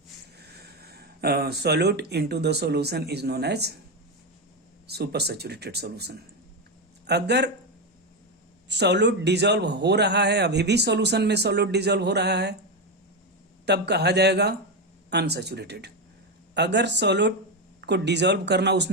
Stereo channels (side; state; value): both; normal; correlation 0.11